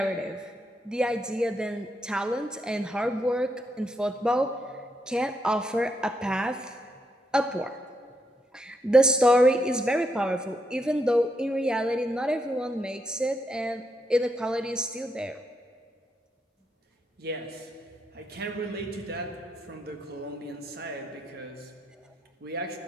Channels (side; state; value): both; normal; correlation 0.79